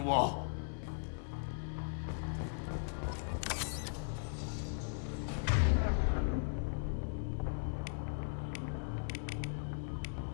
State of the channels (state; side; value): silent; right; 52 dB below the other